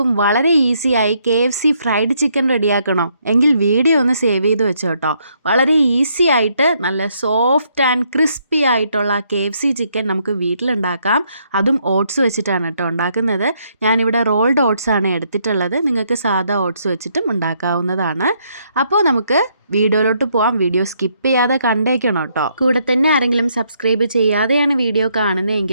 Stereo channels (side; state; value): both; inverted; correlation -0.73